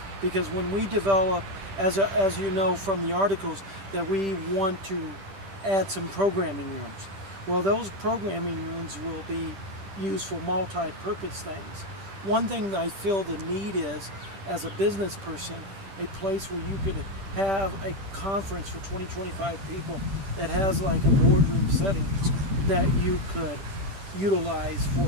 Because when we develop, as you know from the articles, that we want to add some programming rooms. Well, those programming rooms will be used for multi-purpose things. One thing that I feel the need is, as a business person, a place where you could have a conference for 20-25 people that has like a boardroom setting that you could utilize for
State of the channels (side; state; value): left; late; 10 ms